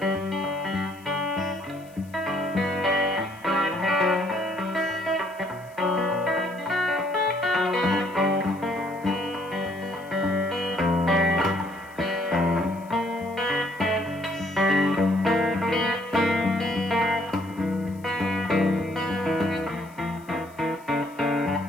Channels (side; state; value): left; noise; hiss, 27 dB below the sound